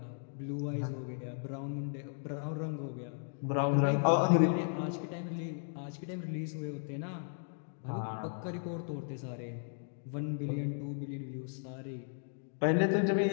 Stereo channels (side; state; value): right; silent; digital silence